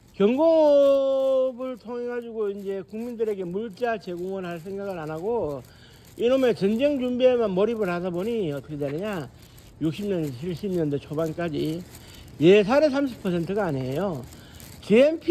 경공업을 통해 가지고 이제 국민들에게 물자 제공을 할 생각을 안 하고 이놈의 전쟁 준비에만 몰입을 하다 보니 어떻게 되느냐, 60년대 70년대 초반까지 예산의 30%가 아니에요.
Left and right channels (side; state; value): both; identical; correlation 1.00